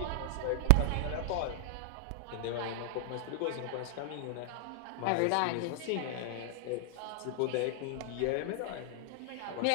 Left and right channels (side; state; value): both; different; correlation 0.00